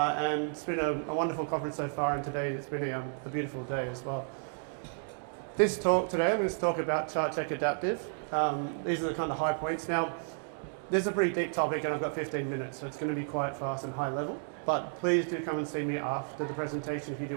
it's been a wonderful conference so far, and today it's been a beautiful day as well. This talk today, I'm going to talk about ChartCheck Adaptive. These are the kind of high points. Now, this is a pretty deep topic, and I've got 15 minutes, so it's going to be quite fast and high level. But please do come and see me after the presentation if you do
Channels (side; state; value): left; silent; 56 dB below the other